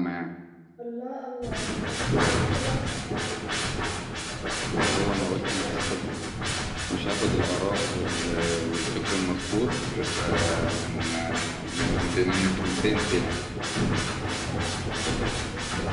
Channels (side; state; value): both; identical; correlation 1.00